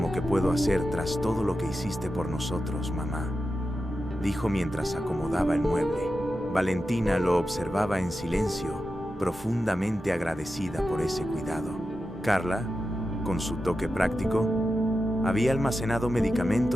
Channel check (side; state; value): both; normal; correlation 0.91